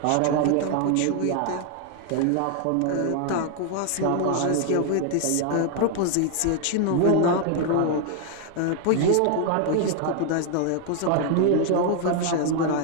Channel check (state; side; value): different; both; correlation 0.00